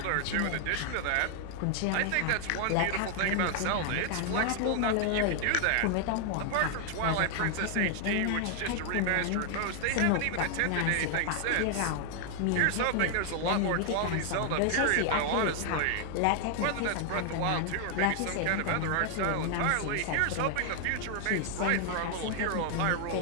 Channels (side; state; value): both; different; correlation 0.00